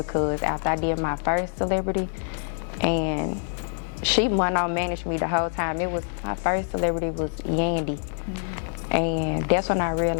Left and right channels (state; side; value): silent; right; digital silence